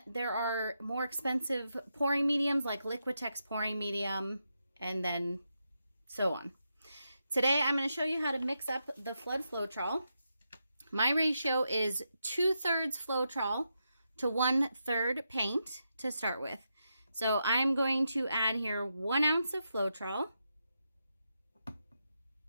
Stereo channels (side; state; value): both; inverted; correlation -0.85